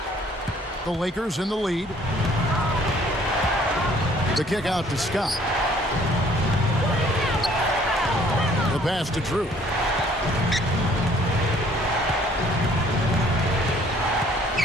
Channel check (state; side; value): normal; both; correlation 0.59